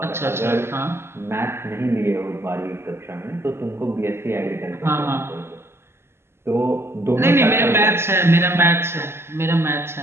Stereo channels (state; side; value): late; left; 0.12 ms